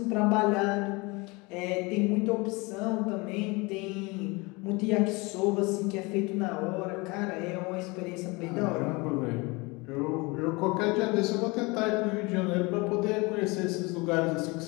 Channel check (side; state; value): right; quieter; 25.9 dB